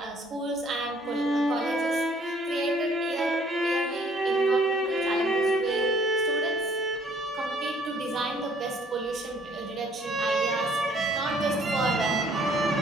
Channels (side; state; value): both; normal; correlation 0.61